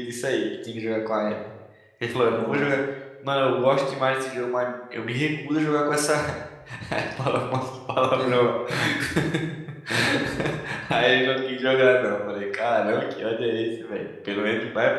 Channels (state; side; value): identical; both; correlation 1.00